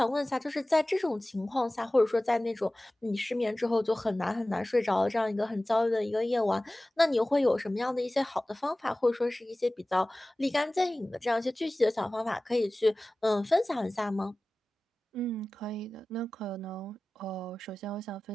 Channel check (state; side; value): normal; both; correlation 0.97